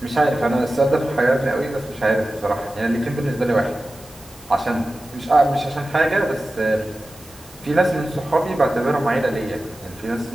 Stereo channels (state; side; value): noise; right; hiss, 25 dB below the sound